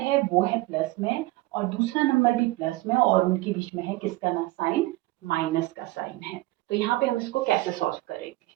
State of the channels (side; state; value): left; quieter; 19.5 dB